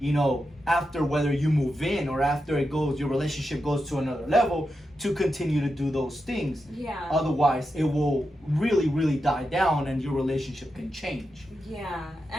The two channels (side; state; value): both; normal; correlation 0.88